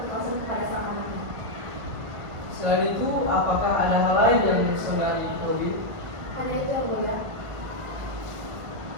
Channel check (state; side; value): late; left; 1.5 ms